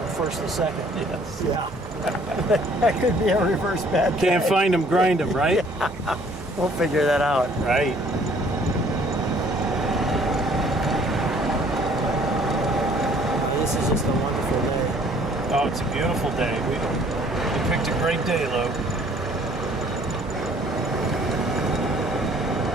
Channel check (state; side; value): normal; both; correlation 0.58